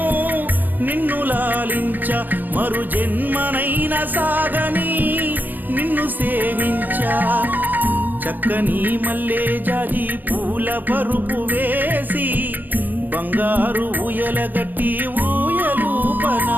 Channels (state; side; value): late; left; 0.087 ms